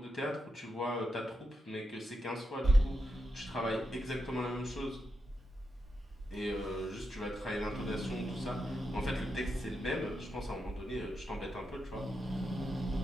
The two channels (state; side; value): normal; both; correlation 0.86